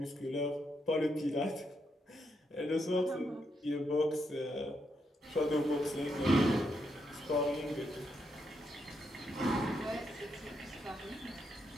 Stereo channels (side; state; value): both; normal; correlation 0.80